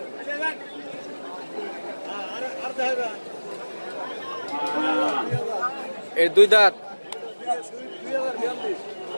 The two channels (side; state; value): both; inverted; correlation -1.00